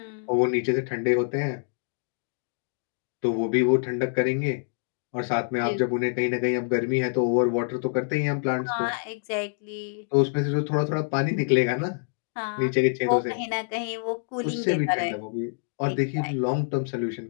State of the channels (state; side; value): silent; right; 60 dB below the other